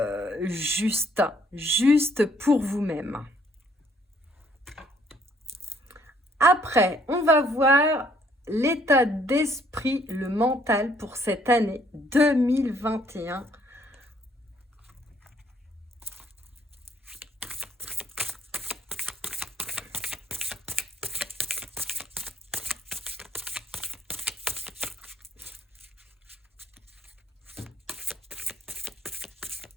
juste pour vous-même. Après, on va voir l'état d'esprit, le mental pour cette année 2021.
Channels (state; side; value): normal; both; correlation 0.65